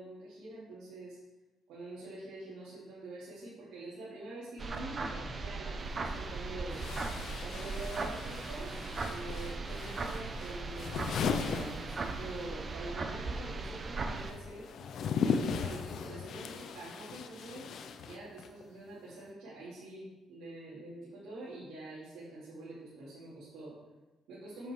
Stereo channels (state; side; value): normal; both; correlation 0.71